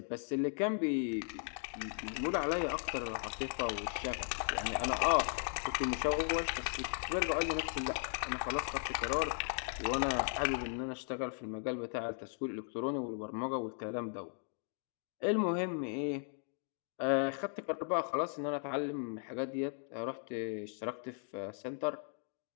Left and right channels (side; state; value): right; silent; 53 dB below the other